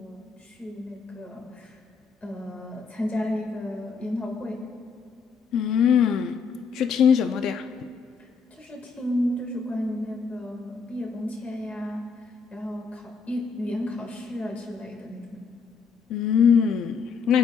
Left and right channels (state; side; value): quieter; right; 5.5 dB